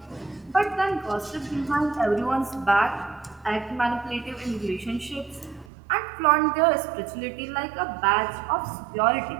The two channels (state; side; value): drops out; left; at 5.7 s